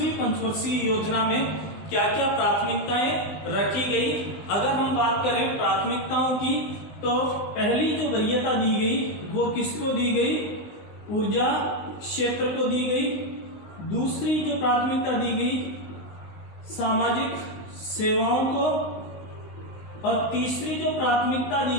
पंचवर्षीय योजना में क्या क्या प्राथमिकताएं रखी गई। अगर हम बात करें प्राथमिकताओं की तो पहली जो वरीयता दी गई वो किसको दी गई, ऊर्जा क्षेत्र को दी गई। दूसरी जो प्राथमिकता दी गई सामाजिक सेवाओं को, और तीसरी जो प्राथमिकता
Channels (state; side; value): late; right; 19 ms